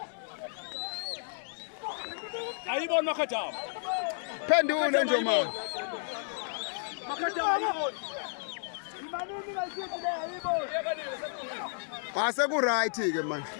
Ayibona Makhataba. Phendule nje manje. Makhataba ayibona. Ase ku right ke manje.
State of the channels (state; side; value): silent; right; digital silence